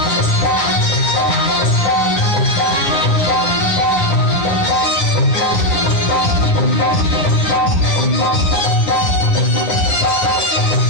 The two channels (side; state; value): right; late; 9.4 ms